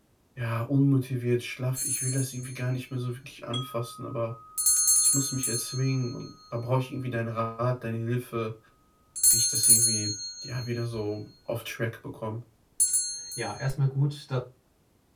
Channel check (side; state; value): both; identical; correlation 1.00